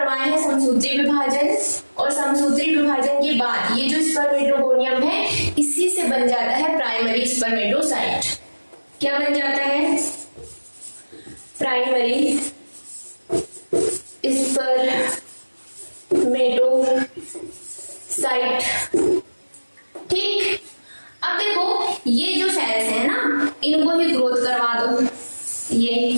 हैं समसूत्री विभाजन, और समसूत्री विभाजन के बाद ये जो स्पर्मेटोगोनियम है इसी से बन जाता है प्राइमरी स्पर्मेटोसाइट। क्या बन जाता है, प्राइमरी स्पर्मेटोसाइट, ठीक। अब देखो ये जो सेल्स है ना, इनको ही ग्रोथ करवा दो,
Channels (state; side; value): inverted; both; correlation -1.00